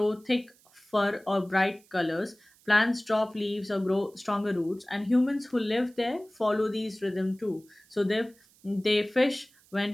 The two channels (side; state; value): right; noise; hiss, 30 dB below the sound